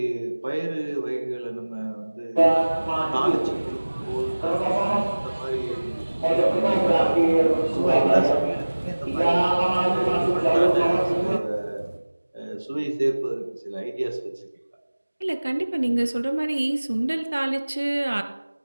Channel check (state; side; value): inverted; both; correlation -1.00